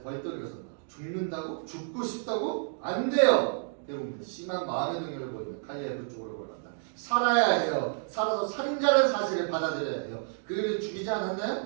벌떡 일어선다. 죽는다고? 죽고 싶다고? 안 돼요! 대부분 심한 마음의 능력을 보이면 칼리아의 그쪽으로 걸어간다. 살아야 해요. 살아서 살인자라는 사실을 받아들여야 해요. 그를 죽이지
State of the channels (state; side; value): silent; left; digital silence